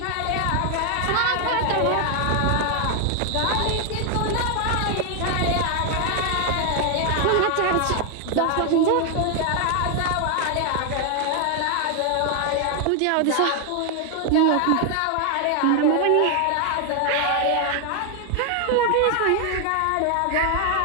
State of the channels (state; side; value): different; both; correlation 0.00